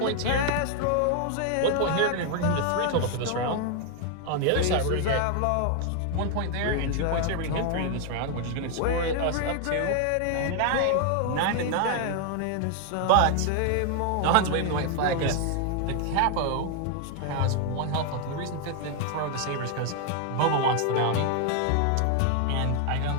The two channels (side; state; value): both; different; correlation 0.00